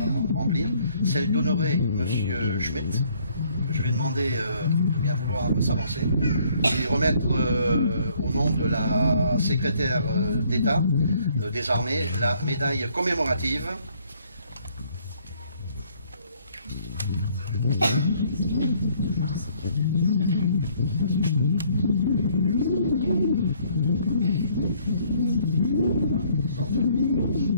remplir, celle d'honorer M. Schmitt. Je vais demander de bien vouloir s'avancer et remettre au nom de la secrétaire d'État des armées la médaille commémorative.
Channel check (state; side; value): inverted; both; correlation -0.64